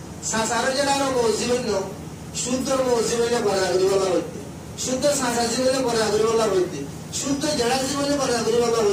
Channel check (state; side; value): identical; both; correlation 1.00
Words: শাসার জেড়ার মূল জীবন ন সূত্র মূল জীবনে পর্দা করে বলা হইতে শুদ্ধ শাসা জীবনে পর্দা করে বলা হইতে শুদ্ধ জেড়া জীবনে পর্দা করে বলা